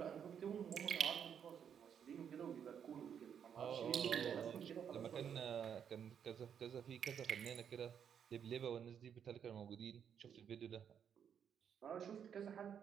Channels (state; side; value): quieter; left; 8.1 dB